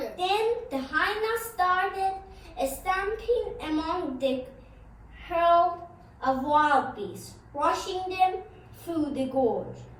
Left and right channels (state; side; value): identical; both; correlation 1.00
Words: Then the hyenas started stamping among the herd of wild beasts, rushing them through the gorge